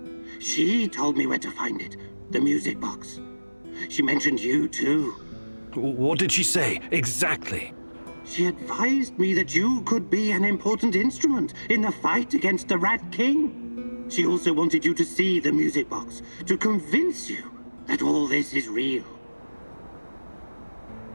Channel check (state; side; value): inverted; both; correlation -1.00